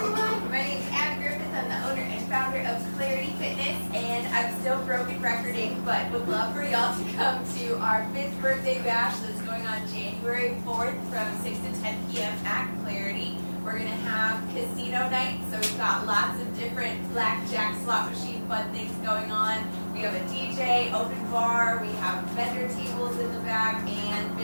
my name is Abby Griffith. I'm the owner and founder of Clarity Fitness, and I'm still broken recording, but would love for y'all to come to our 5th birthday bash that's going on January 4th from 6 to 10 p.m. at Clarity. We're going to have casino night, so we've got lots of different blackjack, slot machine, fun things going on. We have a DJ, open bar, we have vendor tables in the back, and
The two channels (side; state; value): both; inverted; correlation -1.00